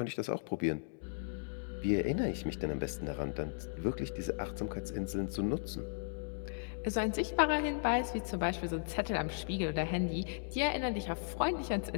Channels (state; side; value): silent; right; digital silence